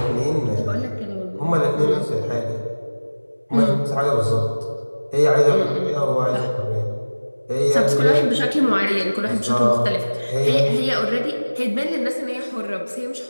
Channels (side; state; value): both; inverted; correlation -1.00